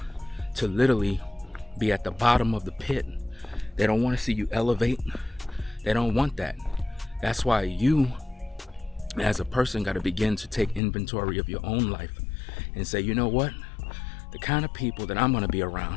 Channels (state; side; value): drops out; right; at 10.8 s